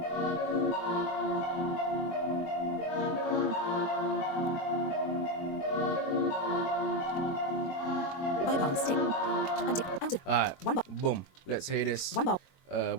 Bypass. Tick. Untick. Out of Alright, 1 bar. boom. Let's hear this. 1 bar.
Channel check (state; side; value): late; right; 22 ms